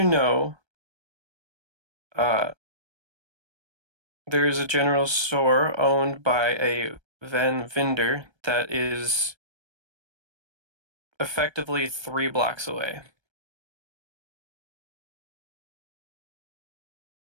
know, there is a general store owned by a vendor that is effectively 3 blocks away.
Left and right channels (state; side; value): late; left; 1.3 ms